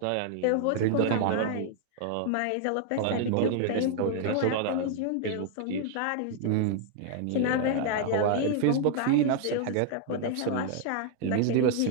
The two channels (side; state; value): both; different; correlation 0.00